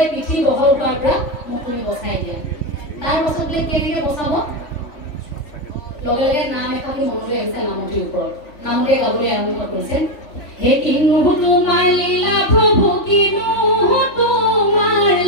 পিঠি বহল হোৱাৰ পৰা মোক তুমি বচাই দিয়া তাৰ পাছত বোলে কেনেকৈ বচাব লগে লগে নাম এফাকি মনলৈ আহিছে নামতিৰ ওপৰত নামতিয়ে গাবলৈ আৰম্ভ কৰিছে হে কিনো তোমাৰ লীলা প্ৰভু কিনো তোমাৰ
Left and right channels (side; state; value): right; late; 3.5 ms